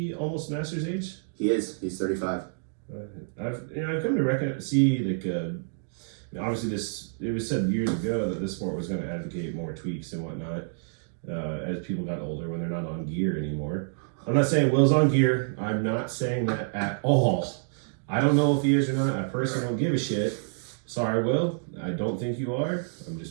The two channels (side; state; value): left; silent; digital silence